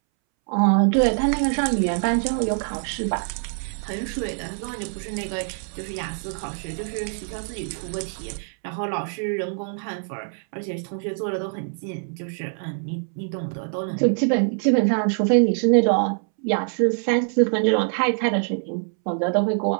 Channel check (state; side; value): silent; left; 62 dB below the other